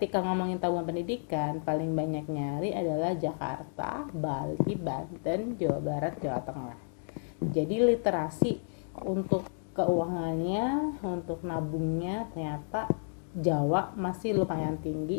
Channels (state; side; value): silent; right; digital silence